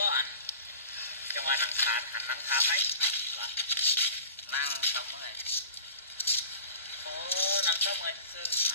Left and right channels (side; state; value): both; inverted; correlation -0.39